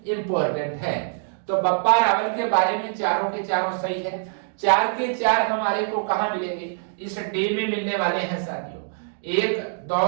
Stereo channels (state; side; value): silent; left; digital silence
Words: इंपॉर्टेंट है। तो बप्पा रावल के बारे में चारों के चारों सही है। 4 के 4 हमारे को कहां मिलेंगे? इस डे में मिलने वाले हैं साथियों। 1,